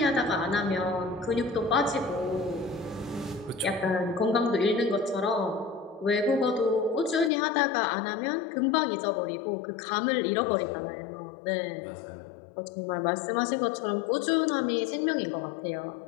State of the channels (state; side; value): drops out; right; at 7.3 s